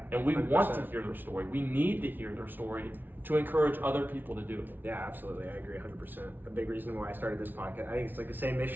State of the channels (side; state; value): left; late; 0.091 ms